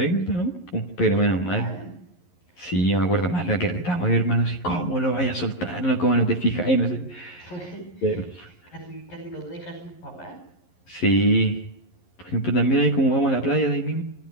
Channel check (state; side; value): late; right; 11 ms